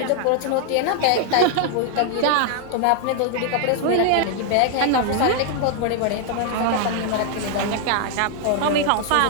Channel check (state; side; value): different; both; correlation 0.00